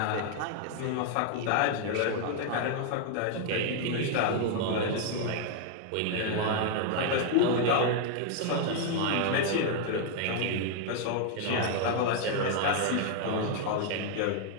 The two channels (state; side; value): different; both; correlation 0.00